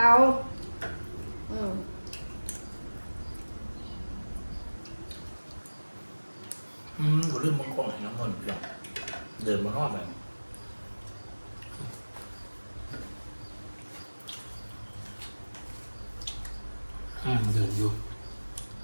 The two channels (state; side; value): inverted; both; correlation -1.00